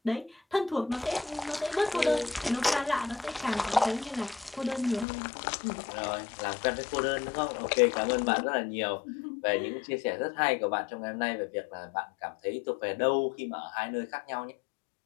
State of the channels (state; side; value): drops out; right; at 5.1 s